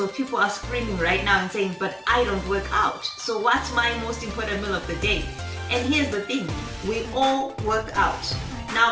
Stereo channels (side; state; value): both; identical; correlation 1.00